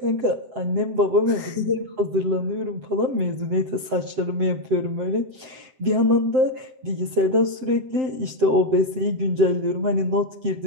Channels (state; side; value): late; left; 7.7 ms